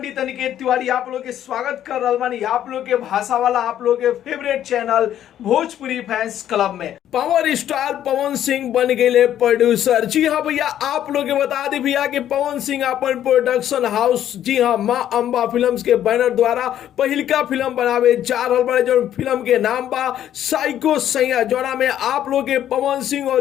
अनिकेत तिवारी आप लोग के स्वागत कर रहा बानी आप लोग के भाषा वाला आप लोग के favourite channel Bhojpuri fans club में। पावर स्टार पवन सिंह बन गए प्रोड्यूसर। जी हाँ भैया, आप लोग के बता दी भैया कि पवन सिंह अपन प्रोडक्शन हाउस जी हाँ माँ अंबा फिल्म्स के बैनर द्वारा पहिलका फिल्म बनावे जा रहा बड़े, जो फिल्म के नाम बा साइको सैया, जोड़ा में आप लोग के पवन सिंह और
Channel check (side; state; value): right; quieter; 11.1 dB